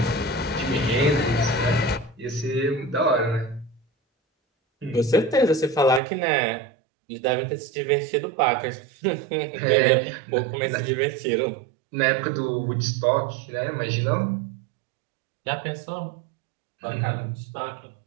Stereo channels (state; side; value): drops out; left; at 6.0 s